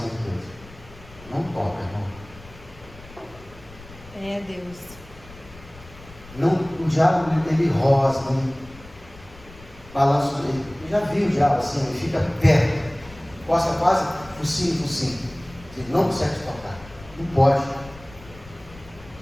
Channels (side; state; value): left; noise; rumble, 20 dB below the sound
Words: de Deus. Não toca, irmão. É Deus. Não, o diabo, ele rosa, ele balança. Eu já vi o diabo assim, ele fica perto, costa quase focinho. Ele não consegue tocar. Não pode.